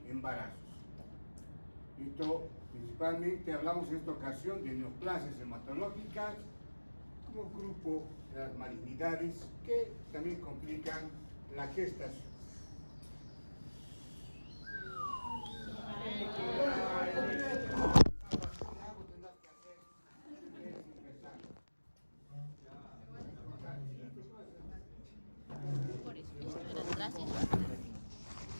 embarazos. Esto principalmente hablamos en esta ocasión de neoplasias hematológicas como grupo de las malignidades que también complican la gestación. Por eso, esto era atrás y esto.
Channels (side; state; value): both; inverted; correlation -1.00